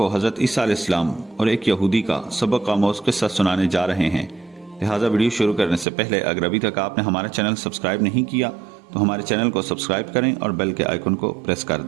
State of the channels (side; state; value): left; drops out; at 5.9 s